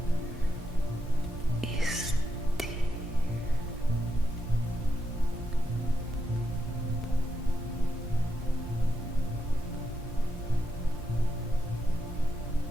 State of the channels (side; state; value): both; normal; correlation 0.83